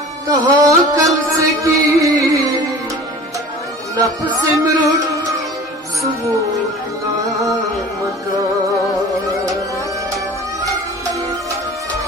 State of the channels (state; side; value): normal; both; correlation 0.41